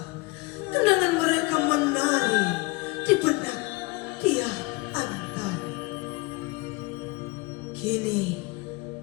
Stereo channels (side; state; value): right; quieter; 24.9 dB